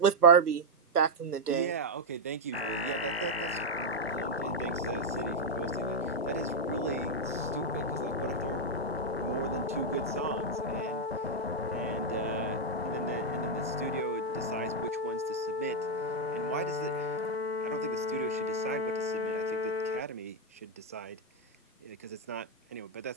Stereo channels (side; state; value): both; normal; correlation -0.02